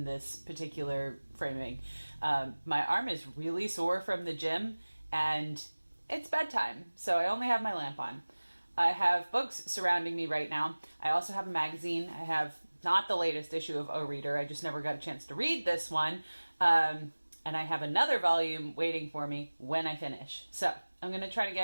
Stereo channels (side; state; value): both; inverted; correlation -1.00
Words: this particular framing. My arm is really sore from the gym, and it's bedtime, so I only have my lamp on. I have books surrounding me right now. I also have a magazine. I have not the latest issue of O Reader. I just never got a chance to read this one. And I have another volume waiting for me when I finish. So I'm going to try to